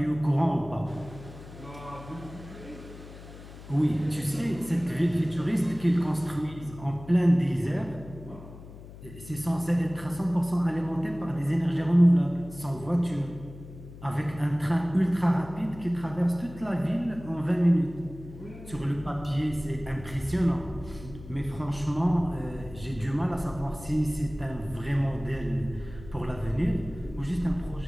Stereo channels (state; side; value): noise; left; hum, 16 dB below the sound